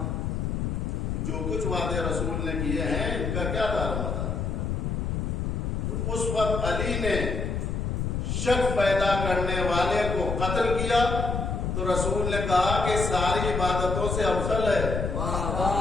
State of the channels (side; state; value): left; noise; rumble, 1 dB below the sound